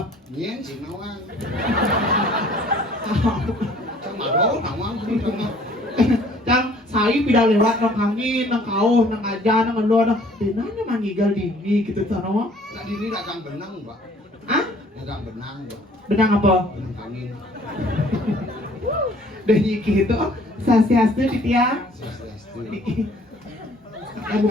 nyen si nawang sama do nawang sama Cang saya pindah lewat nang angin, nang kau, nang aja, nang elo, nang dinanya mangigal dini gitu sana. nah di ini dagang benang mbak Hah? dagang benang mbak Benang apa? benang angin Lagi gitu, sasiasnya di tiang. Swastiastu. Ya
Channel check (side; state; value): both; normal; correlation 0.56